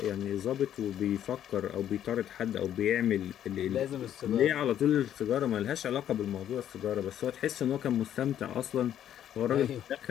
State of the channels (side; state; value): right; quieter; 10.6 dB